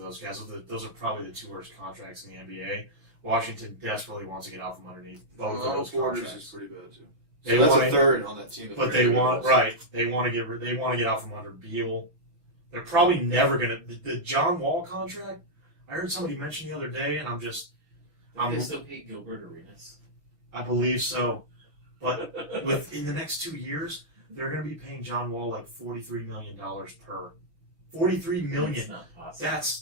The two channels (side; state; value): left; late; 5.9 ms